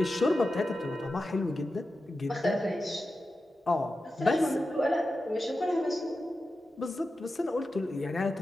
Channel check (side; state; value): both; normal; correlation 0.92